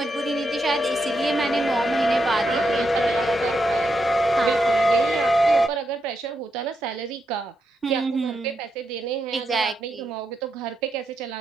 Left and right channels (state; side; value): normal; both; correlation 0.83